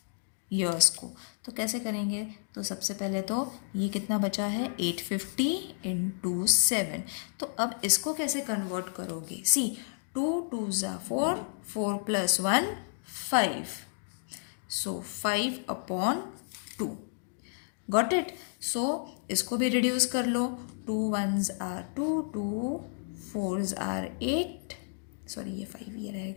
ईयर्स को, तो कैसे करेंगे, तो सबसे पहले तो ये कितना बचा है, 850 into 7. तो अब इसको कैसे कन्वर्ट करोगे, सी 2 2s are 4, 4 plus 1 5. So 5 upon 2. Got it? So इसको भी रिड्यूस कर लो. 2 1s are 2, 2 4s are 8. Sorry ये 5 ये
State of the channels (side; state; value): right; silent; digital silence